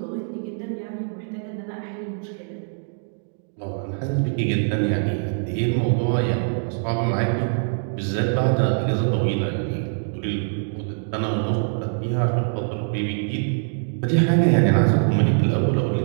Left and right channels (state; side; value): silent; left; digital silence